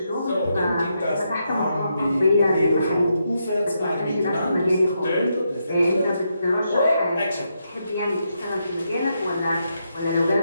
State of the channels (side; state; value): both; inverted; correlation -0.82